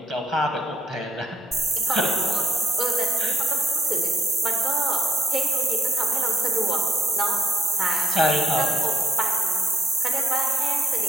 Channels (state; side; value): normal; both; correlation 0.70